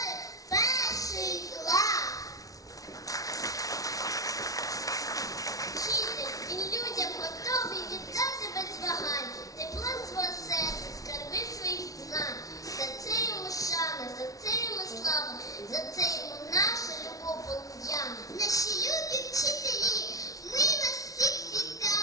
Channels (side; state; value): right; late; 0.17 ms